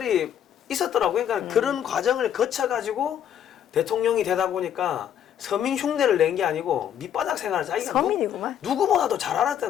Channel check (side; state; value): right; quieter; 9.7 dB